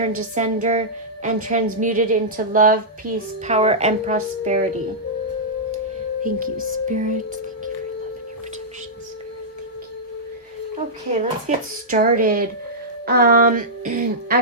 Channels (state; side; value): normal; both; correlation -0.12